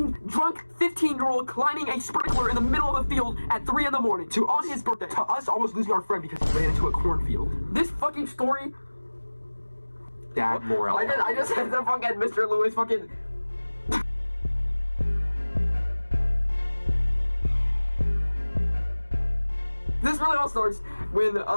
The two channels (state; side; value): inverted; both; correlation -1.00